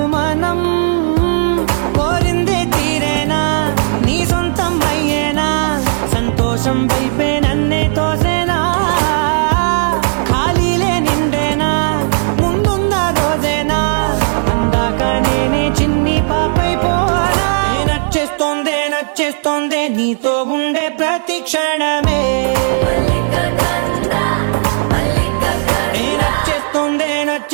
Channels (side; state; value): left; silent; digital silence